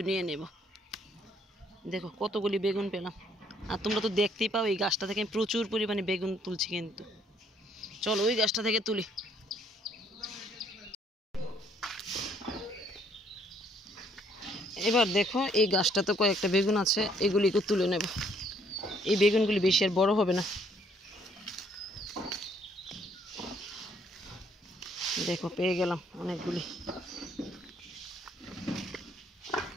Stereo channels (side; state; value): both; normal; correlation 0.65